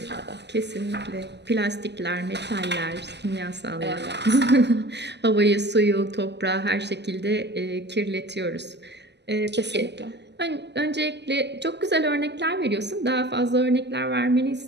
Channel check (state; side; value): late; left; 0.50 ms